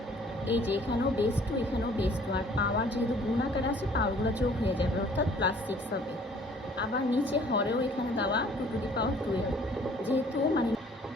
এই যে এখানেও বেস 2 এখানেও বেস 2, আর পাওয়ার যেহেতু গুণ আকারে আছে পাওয়ারগুলো যোগ হয়ে যাবে, অর্থাৎ +6 হবে। আবার নিচে হরেও এখানে দেওয়া 2⁴12, যেহেতু মানে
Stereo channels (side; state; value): both; normal; correlation 0.55